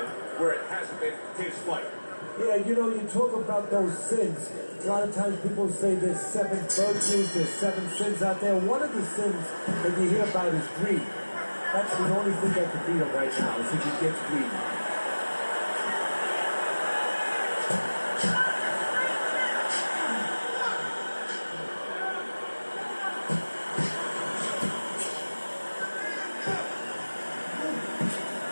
where it hasn't been his fight. Yeah, you know, you talk about those sins. A lot of times people say there's 7 virtues, there's 7 sins out there. One of the sins that you hear about is greed. That's the only thing that can beat him right now, is if he gets greedy.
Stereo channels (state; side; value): inverted; both; correlation -1.00